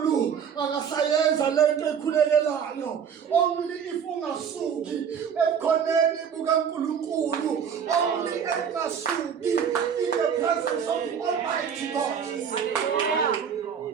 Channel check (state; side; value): quieter; left; 7.5 dB